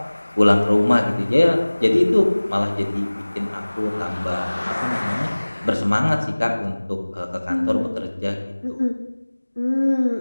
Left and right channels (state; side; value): inverted; both; correlation -1.00